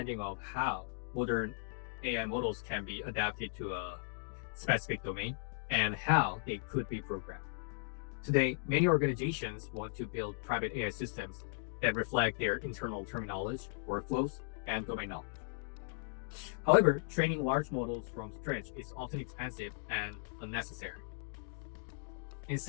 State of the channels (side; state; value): right; silent; digital silence